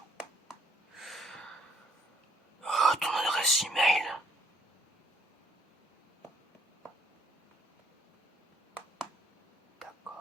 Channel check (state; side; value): normal; both; correlation 0.64